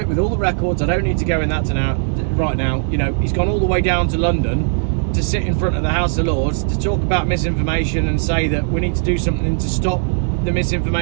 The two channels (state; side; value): silent; left; 67 dB below the other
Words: with all the records. I don't need to go in that right now. You know, he's gone all the way down to London to sit in front of the House of Lords to talk about misinformation and say that we need to do something to stop the